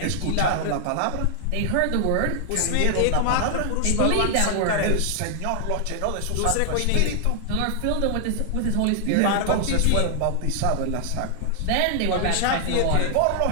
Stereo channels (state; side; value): different; both; correlation 0.00